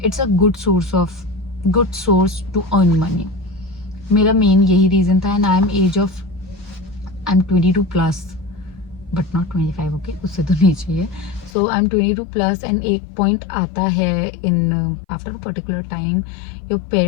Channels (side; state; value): right; drops out; at 11.5 s